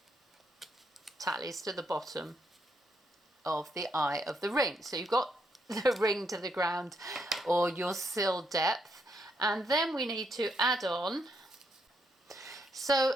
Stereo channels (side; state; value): both; normal; correlation 0.77